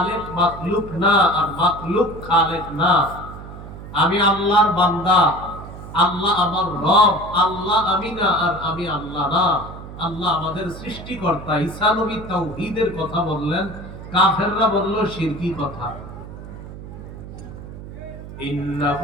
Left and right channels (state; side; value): noise; right; hum, 13 dB below the sound